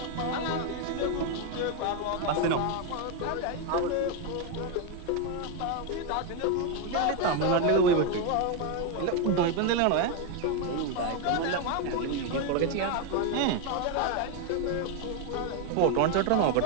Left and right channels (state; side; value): different; both; correlation 0.01